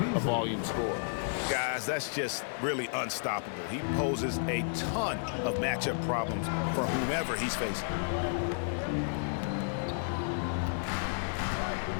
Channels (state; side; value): silent; right; digital silence